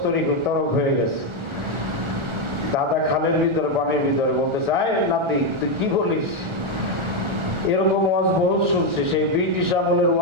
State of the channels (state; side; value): late; left; 1.4 ms